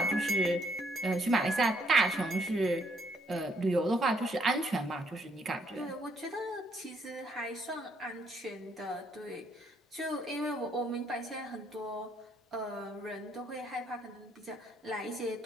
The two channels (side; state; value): both; normal; correlation 0.70